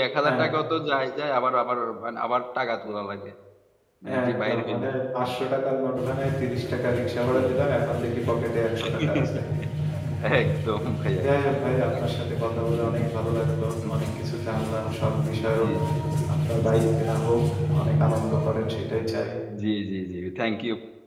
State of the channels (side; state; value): both; identical; correlation 1.00